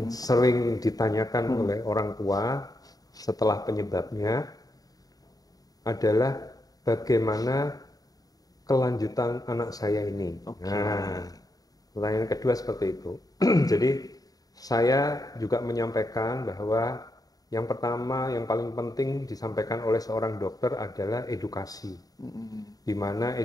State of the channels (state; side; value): late; right; 0.18 ms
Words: sering ditanyakan oleh orang tua setelah penyebabnya adalah bagaimana kelanjutan anak saya ini. Nah, pertanyaan kedua seperti itu. Jadi saya juga menyampaikan bahwa yang pertama, yang paling penting disampaikan oleh seorang dokter adalah edukasi, di mana